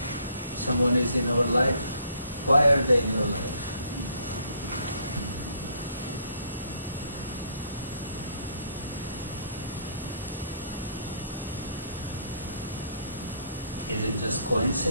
Someone is in our life. Why are they in your life? Is it just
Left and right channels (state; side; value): inverted; both; correlation -0.65